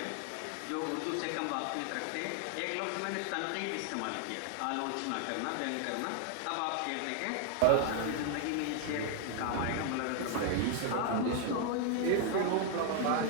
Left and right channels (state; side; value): different; both; correlation 0.00